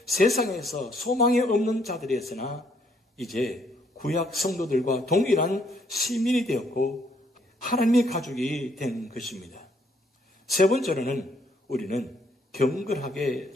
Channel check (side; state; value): both; normal; correlation 0.69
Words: 세상에서 소망이 없는 자들이었으나 이제 구약 성도들과 동일한 시민이 되었고 하나님의 가족이 된 것입니다. 세 번째로는 우리는 경건하게